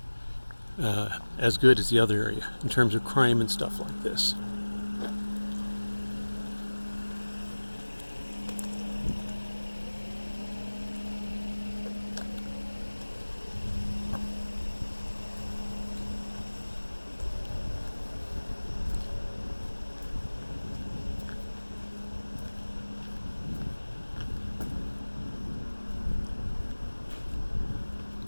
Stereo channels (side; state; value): both; inverted; correlation -1.00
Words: as good as the other area in terms of crime and stuff like this.